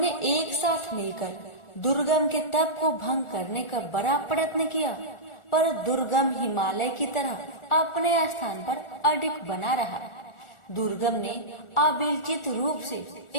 एक साथ मिलकर दुर्गम के तप को भंग करने का बड़ा प्रयत्न किया, पर दुर्गम हिमालय की तरह अपने स्थान पर अडिग बना रहा। दुर्गम ने अविचलित रूप से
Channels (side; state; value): right; late; 1.4 ms